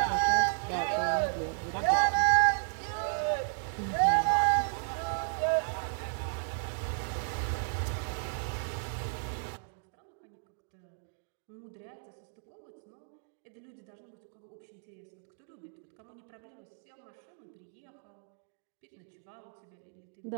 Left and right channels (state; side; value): silent; left; digital silence